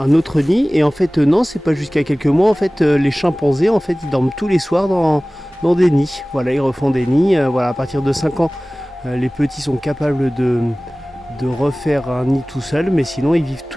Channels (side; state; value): both; normal; correlation 0.98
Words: autre nid, et en fait non, c'est pas jusqu'à quelques mois. En fait les chimpanzés en fait ils dorment tous les soirs dans des nids. Voilà, ils refont des nids. Voilà, à partir de 5 ans les petits sont capables de refaire un nid tout seul, mais sinon ils vivent